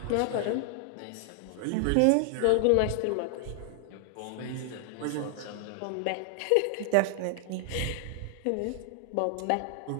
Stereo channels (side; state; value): both; different; correlation 0.00